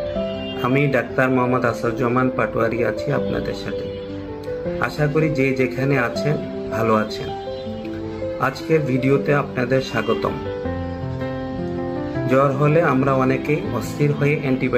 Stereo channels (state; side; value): identical; both; correlation 1.00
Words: আমি ডাক্তার মোহাম্মদ আসাদুজ্জামান পাটোয়ারি আছি আপনাদের সাথে। আশা করি যে যেখানে আছেন ভালো আছেন। আজকের ভিডিওতে আপনাদের স্বাগতম। জ্বর হলে আমরা অনেকেই অস্থির হয়ে